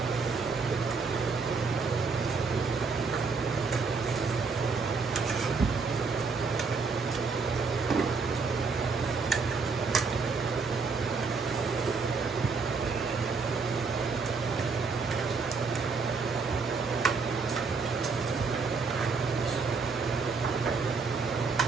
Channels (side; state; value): left; quieter; 4.7 dB